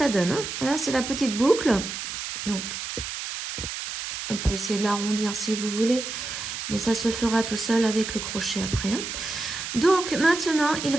donne. Hein. Là, c'est la petite boucle. Donc, on peut essayer de l'arrondir si vous voulez. Mais ça se fera tout seul avec le crochet après. Hein. Donc, maintenant, il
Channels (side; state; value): right; noise; hiss, 6 dB below the sound